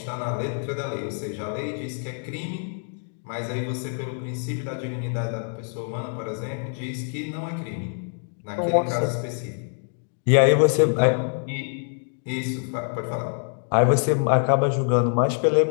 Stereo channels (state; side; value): silent; right; 56 dB below the other